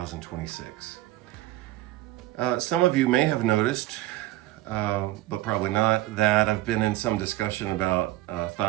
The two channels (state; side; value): quieter; left; 16.4 dB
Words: Some of you may have noticed, but probably not, that I've been in some discussion about